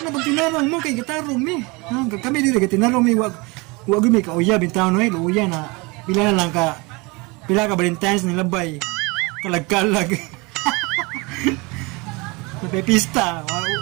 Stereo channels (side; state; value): left; quieter; 26.4 dB